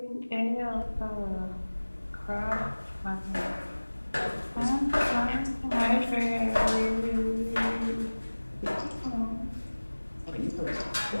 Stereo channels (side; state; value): both; inverted; correlation -1.00